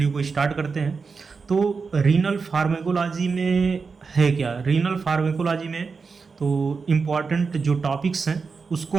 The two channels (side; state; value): left; quieter; 4.9 dB